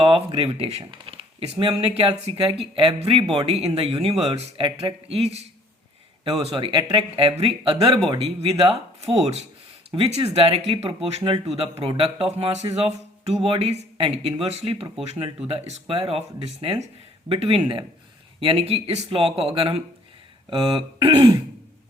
of gravitation. इसमें हमने क्या सीखा है कि every body in the universe attract every other body with a force which is directly proportional to the product of masses of two bodies and inversely proportional to the square of distance between them। यानी कि इस law को अगर हम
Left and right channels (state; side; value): normal; both; correlation 0.58